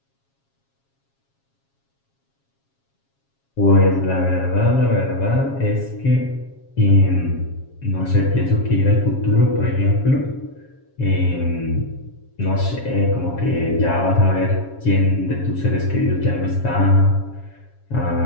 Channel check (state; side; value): late; right; 7.3 ms